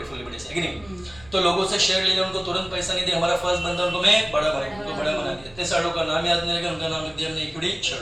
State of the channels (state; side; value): noise; right; rumble, 23 dB below the sound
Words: फुल्ली पेड, है कि नहीं? तो लोगों से शेयर ले लिया, उनको तुरंत पैसा नहीं दिया, हमारा फर्स्ट बंदा उनको मैं बड़ा बना, उनको बड़ा बना दिया, 3 सालों का नाम याद नहीं लगा, उनका नाम लिख दिया हमने इक्विटी शेयर।